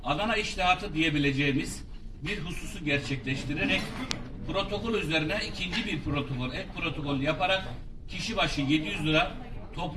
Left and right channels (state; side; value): identical; both; correlation 1.00